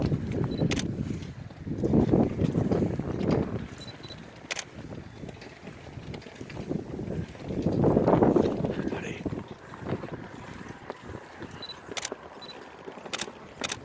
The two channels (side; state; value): both; identical; correlation 1.00